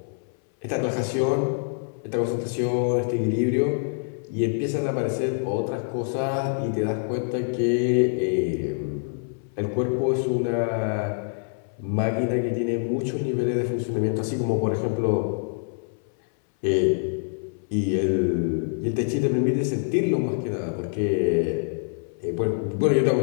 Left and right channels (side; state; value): right; silent; 59 dB below the other